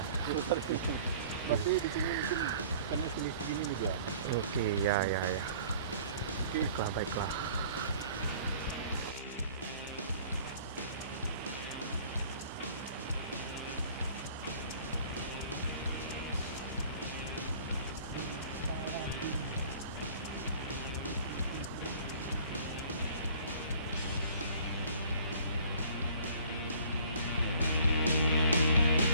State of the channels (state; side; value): inverted; both; correlation -0.52